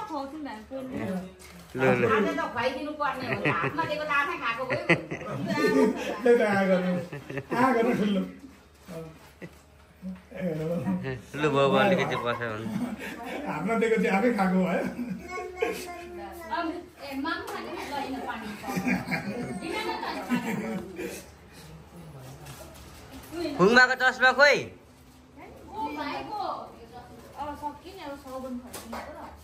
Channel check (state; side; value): identical; both; correlation 1.00